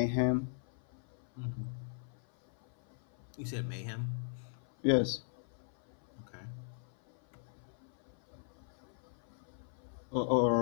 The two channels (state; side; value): silent; right; 52 dB below the other